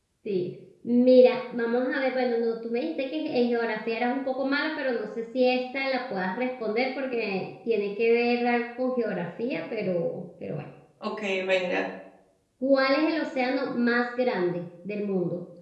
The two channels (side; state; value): both; identical; correlation 1.00